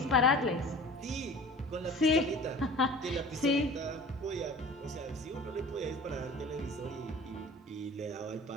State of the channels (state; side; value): normal; both; correlation 0.42